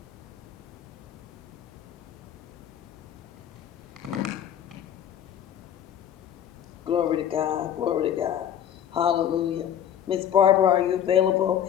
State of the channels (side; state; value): right; quieter; 9.7 dB